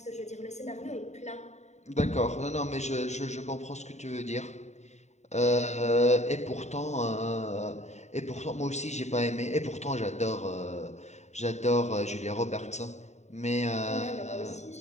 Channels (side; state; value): right; late; 0.33 ms